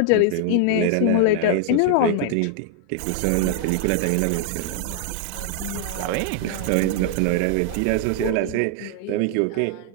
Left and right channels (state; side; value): different; both; correlation 0.00